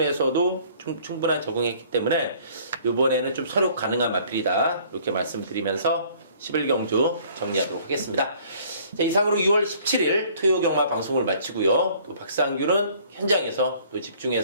충분한 적응했기 때문에 이번에는 좀 서력 가능한 마필이다. 이렇게 말씀드리면서 11경주 정리하도록 하겠습니다. 자, 이상으로 6월 17일 토요 경마 방송을 마치고요. 또 박상규는 현장에서 또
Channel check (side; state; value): both; inverted; correlation -0.56